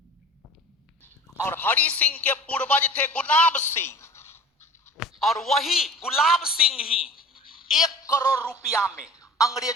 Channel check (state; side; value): normal; both; correlation 0.41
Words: और हरि सिंह के पूर्वज थे गुलाब सिंह, और वही गुलाब सिंह ही 1 करोड़ रुपया में